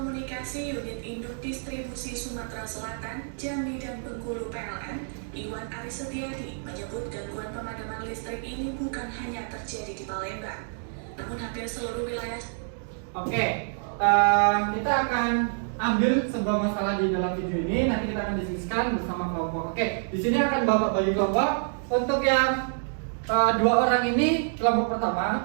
Unit Induk Distribusi Sumatera Selatan, Jambi dan Bengkulu PLN, Iwan Aris Setiadi, menyebut gangguan pemadaman listrik ini bukan hanya terjadi di Palembang, namun hampir seluruh wilayah. Oke, kita akan ambil sebuah masalah di dalam video ini. Nanti kita akan diskusikan bersama kelompok. Oke, di sini akan Bapak bagi kelompok. Untuk yang 2 orang ini kelompok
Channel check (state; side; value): silent; left; digital silence